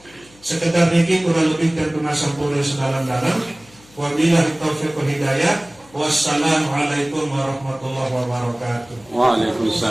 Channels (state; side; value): noise; left; hum, 27 dB below the sound